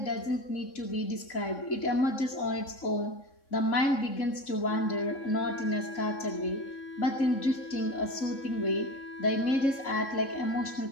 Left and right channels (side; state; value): right; late; 3.6 ms